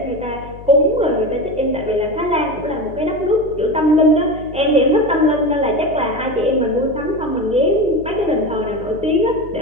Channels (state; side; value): noise; left; hum, 16 dB below the sound